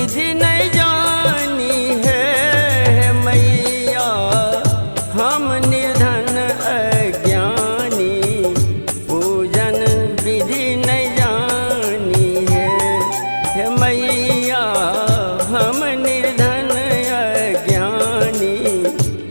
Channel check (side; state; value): both; inverted; correlation -1.00